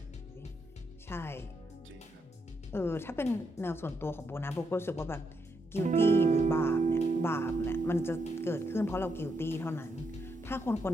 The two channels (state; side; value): normal; both; correlation 0.80